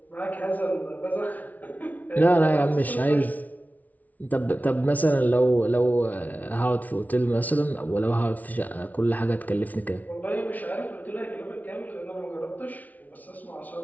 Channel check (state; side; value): late; right; 0.075 ms